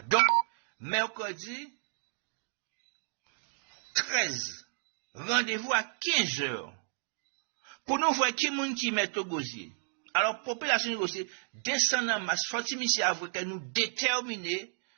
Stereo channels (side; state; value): left; silent; digital silence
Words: Donc, mercredi 13, rendez-vous à 15 heures pour nous voir qui moun qui met au gosier. Alors, population de gosier, descend en masse, faut-il ici avouer que nous déterminer